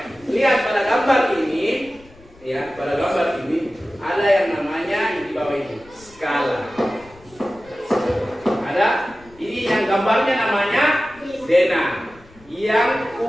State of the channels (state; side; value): noise; left; rumble, 26 dB below the sound